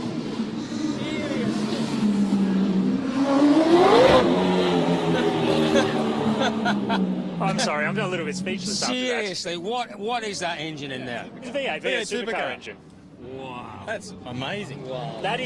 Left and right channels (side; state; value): both; identical; correlation 1.00